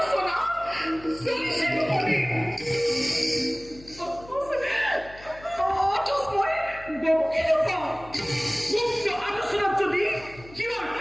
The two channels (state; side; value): noise; left; hum, 20 dB below the sound